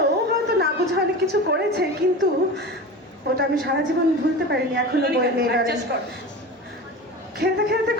ও হয়তো না বুঝে অনেক কিছু করেছে, কিন্তু ওটা আমি সারা জীবন ভুলতে পারিনি এখনো। বই নেই, খেলতে খেলতে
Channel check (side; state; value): both; normal; correlation 0.30